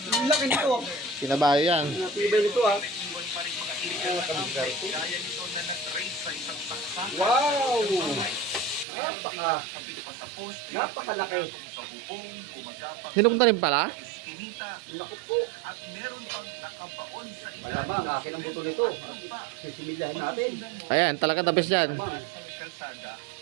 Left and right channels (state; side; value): drops out; left; at 8.8 s